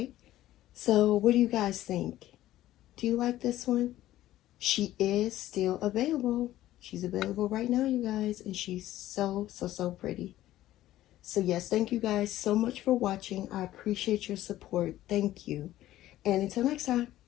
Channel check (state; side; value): quieter; right; 14.4 dB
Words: So what do you guys think? Do you like this one? She is still available. She's available right now, you guys. And she's so pretty. So yes, thank you guys so much for watching. I appreciate your support. Thank you. And until next time,